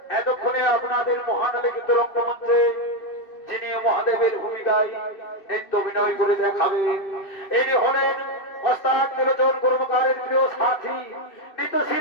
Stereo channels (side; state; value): right; late; 2.7 ms